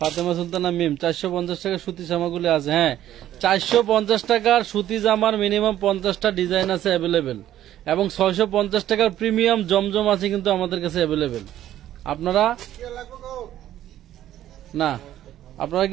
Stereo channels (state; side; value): quieter; left; 12.4 dB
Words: সুলতানা মিম 450 টাকা সুতি জামাগুলি আছে। হ্যাঁ 450 টাকার সুতি জামার মিনিমাম 50টা ডিজাইন আছে অ্যাভেলেবেল, এবং 650 টাকার প্রিমিয়াম জমজম আছে কিন্তু আমাদের কাছে অ্যাভেলেবেল। আপনারা